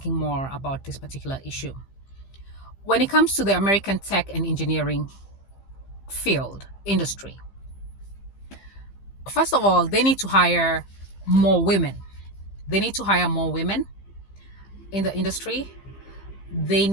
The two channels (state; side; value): late; right; 15 ms